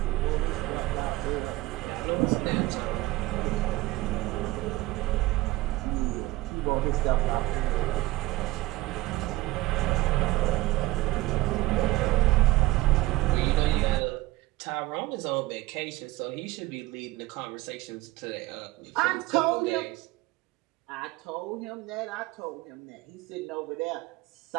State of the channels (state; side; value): quieter; left; 18.2 dB